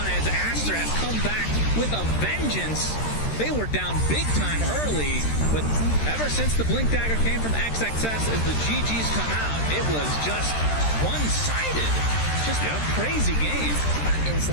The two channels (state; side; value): late; right; 13 ms